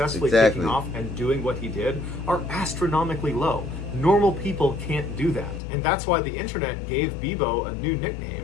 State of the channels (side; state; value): right; drops out; at 5.6 s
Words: Exactly. taking off and doing what he did are astronomically low. Normal people can't do that. And that's why the internet gave Bebo a new